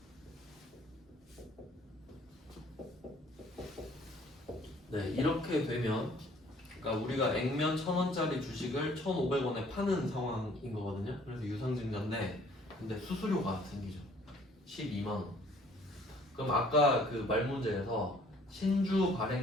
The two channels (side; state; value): both; normal; correlation 0.57